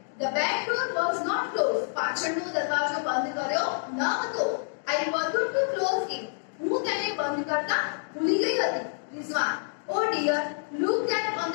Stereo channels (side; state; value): right; silent; digital silence